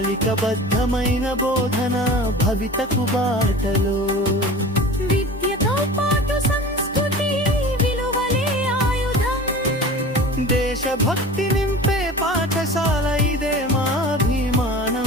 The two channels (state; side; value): normal; both; correlation 0.37